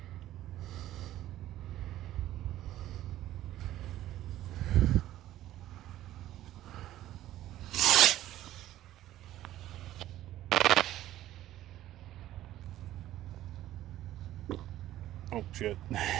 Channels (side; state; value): left; quieter; 13.8 dB